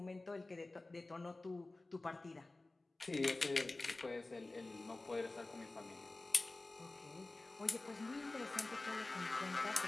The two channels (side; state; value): right; quieter; 3.0 dB